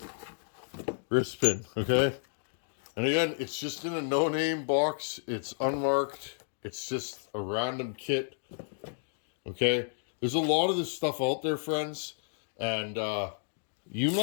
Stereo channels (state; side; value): silent; right; digital silence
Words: wrist pin. Okay. And again, it's just in a no-name box. It's unmarked. It's just a random kit. Okay. There's a lot of this stuff out there, friends. And you